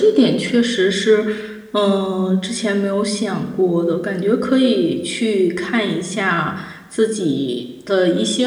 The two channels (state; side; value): identical; both; correlation 1.00